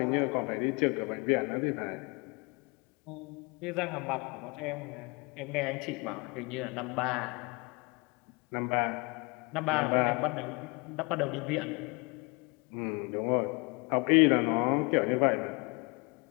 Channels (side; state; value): right; quieter; 29.0 dB